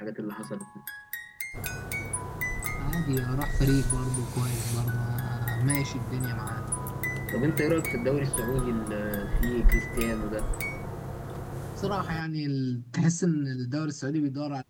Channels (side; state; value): both; identical; correlation 1.00